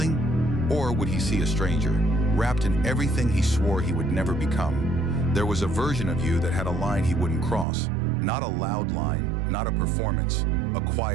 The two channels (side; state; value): left; drops out; at 7.7 s